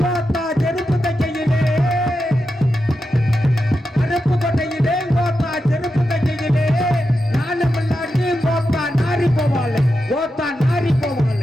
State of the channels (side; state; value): both; normal; correlation 0.88